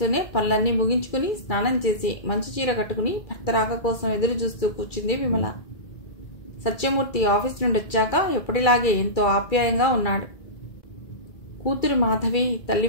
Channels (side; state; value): right; late; 2.3 ms